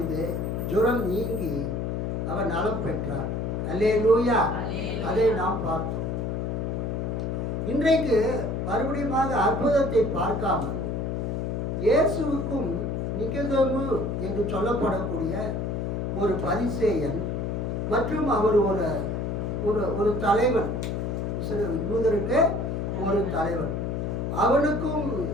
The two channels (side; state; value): left; noise; hum, 1 dB below the sound